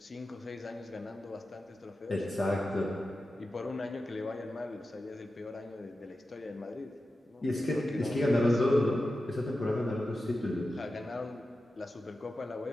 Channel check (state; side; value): normal; both; correlation 0.92